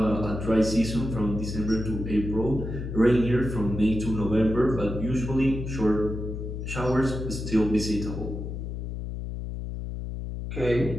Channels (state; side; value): noise; left; hum, 6 dB below the sound